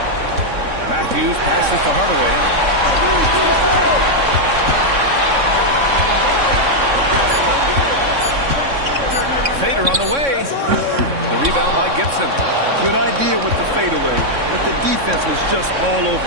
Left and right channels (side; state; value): left; late; 3.6 ms